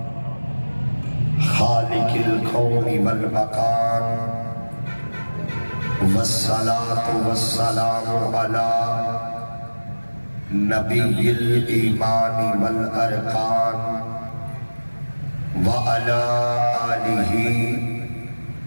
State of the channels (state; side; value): inverted; both; correlation -1.00